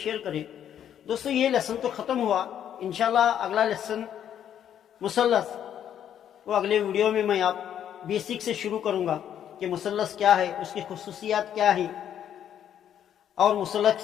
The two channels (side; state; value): right; quieter; 9.8 dB